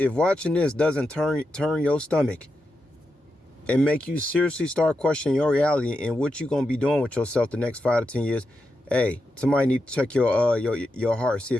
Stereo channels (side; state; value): both; normal; correlation 0.87